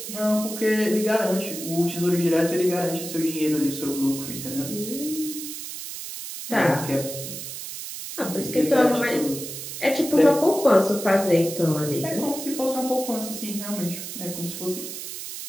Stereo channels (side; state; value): right; noise; hiss, 8 dB below the sound